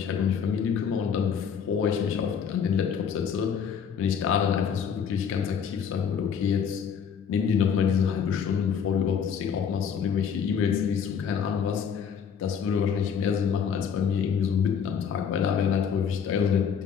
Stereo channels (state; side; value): quieter; right; 7.2 dB